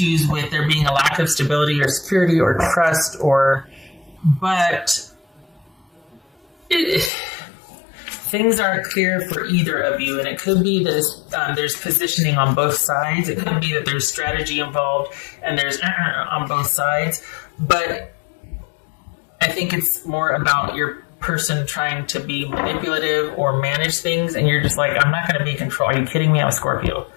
with there being a lack of stability or security or trust, but things aren't clear for either of you, and it could be that there's positioning on both sides. It could be that there's strategy involved and there's on both sides. But I think it's more about your person trying to be manipulative or manage things, and you're just like, I'm not going to be in control. Are you kidding me? I'm a Scorpio.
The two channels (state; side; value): drops out; right; at 7.1 s